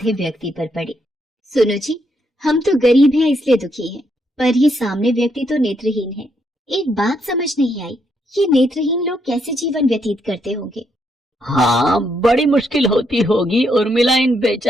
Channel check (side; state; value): both; normal; correlation 0.76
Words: व्यक्ति पर पड़ी। सुनो जी, हम तो गरीब हैं इसलिए दुखी हैं, पर ये सामने व्यक्ति तो नेत्रहीन है। एक बात समझ नहीं आई, ये नेत्रहीन लोग कैसे जीवन व्यतीत करते होंगे? हाँ, बड़ी मुश्किल होती होगी उर्मिला इन